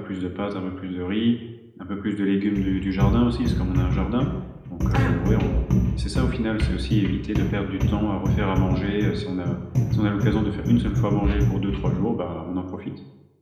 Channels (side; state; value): both; identical; correlation 1.00